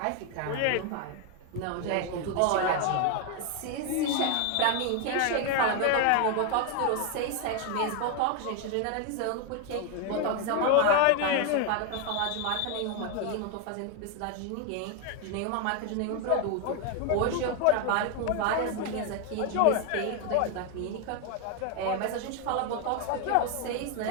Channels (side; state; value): both; different; correlation 0.01